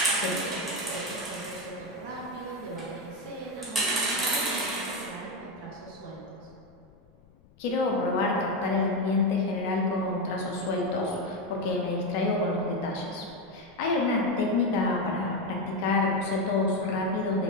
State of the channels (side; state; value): left; noise; rumble, 28 dB below the sound